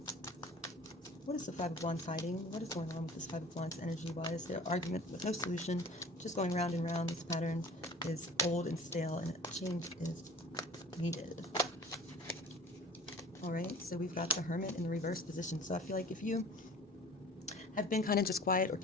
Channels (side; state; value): both; normal; correlation 0.44